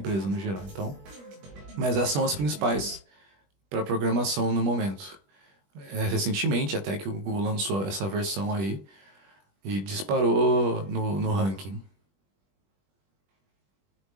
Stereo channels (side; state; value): left; late; 21 ms